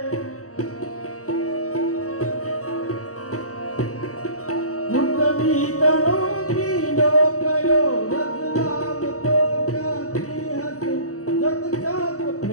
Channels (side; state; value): right; late; 0.65 ms